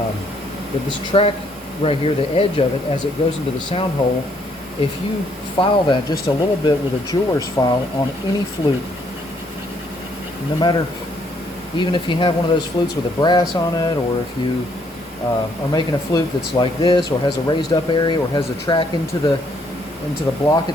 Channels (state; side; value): normal; both; correlation 0.69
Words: this track right here, the edge of it, as it goes into the sound hole, if you file that just a little bit with a jeweler's file on any flute, no matter, even if you have one of those flutes with a brass on it, or if you are making a flute that's like this, or has a raised up area, or has a track into the block